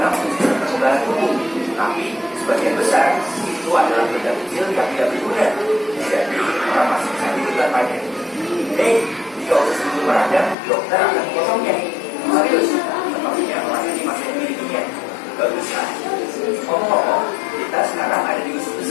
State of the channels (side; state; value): right; drops out; at 10.6 s